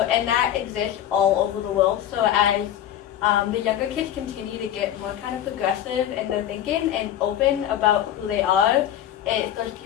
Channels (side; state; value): right; quieter; 11.1 dB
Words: and that exists all over the world. So as the younger kids continue to get more kind of progressive in their thinking and open about who they are,